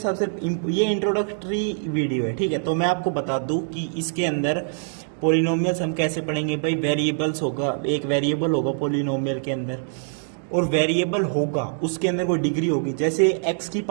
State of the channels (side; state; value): left; silent; 63 dB below the other